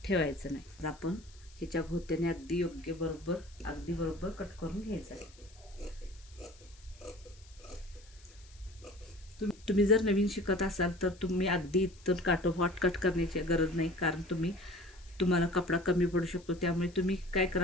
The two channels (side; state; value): left; noise; hiss, 25 dB below the sound